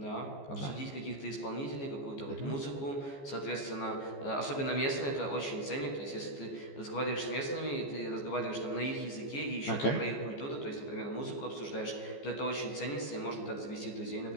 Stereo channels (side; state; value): right; late; 14 ms